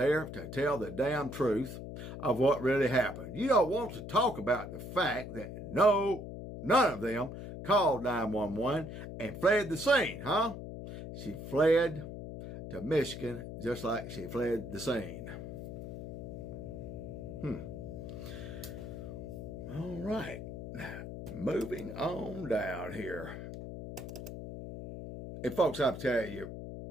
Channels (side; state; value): left; noise; hum, 9 dB below the sound